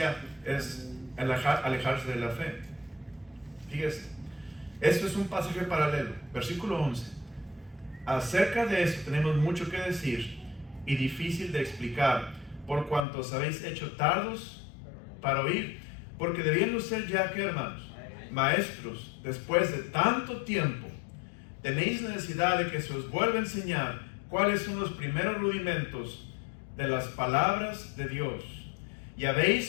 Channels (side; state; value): right; drops out; at 13.1 s